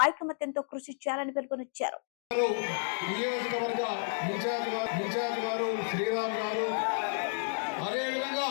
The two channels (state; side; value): silent; right; digital silence